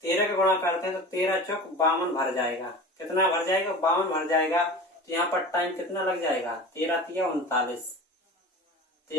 13 का गुणा करते हैं तो 13 चौक 52 भर जाएगा। कितना भर जाएगा? 52 भर जाएगा। तो यहाँ पर टाइम कितना लग जाएगा? 13 तिया 39,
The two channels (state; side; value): normal; both; correlation 0.35